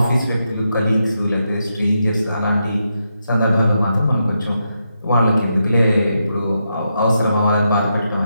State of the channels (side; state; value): both; inverted; correlation -0.84